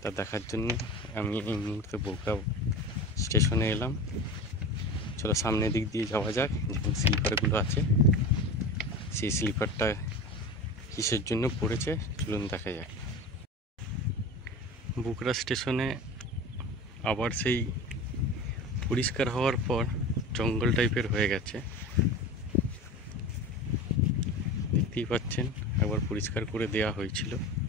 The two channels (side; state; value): both; normal; correlation 0.32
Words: দেখার জন্য আমি এই মুহূর্তে বোকরা স্টেশনে এলাম। চলো সামনের দিক দিয়ে যাওয়া যাক, যেখানে স্লিপারগুলো আছে সেই স্লিপারটা কিসের জন্য পড়েছে চলুন দেখা যাক। বোকরা স্টেশনে আবার সেই পরিষ্কার হওয়ার পর জঙ্গল টাইপের হয়ে গেছে, দেখতেই পাচ্ছেন। একবার পরিষ্কার করে দেওয়া হয়েছিল